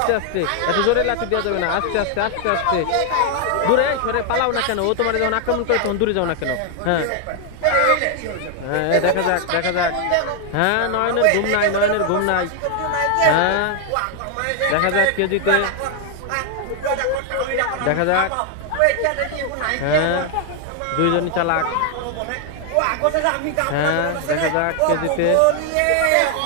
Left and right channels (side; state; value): both; different; correlation 0.00